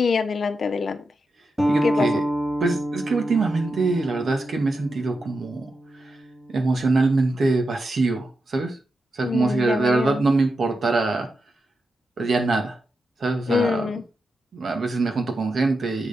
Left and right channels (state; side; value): normal; both; correlation 0.88